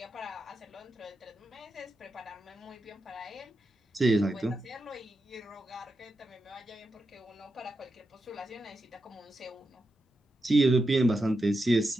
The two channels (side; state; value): both; normal; correlation 0.87